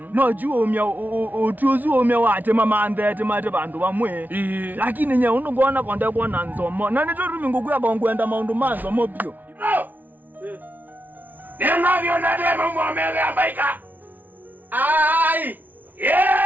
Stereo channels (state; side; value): late; left; 0.081 ms